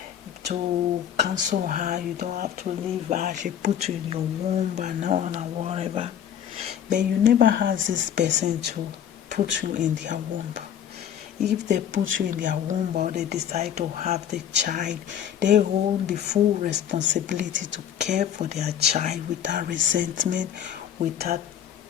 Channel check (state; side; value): quieter; right; 9.5 dB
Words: cancel her. You don't have to leave her. She put you in your womb and on and whatever. But you never ask this person to put you in their womb. If they put you in their womb or they decide to have the child, they hold the full responsibility to care for their child without resentment, without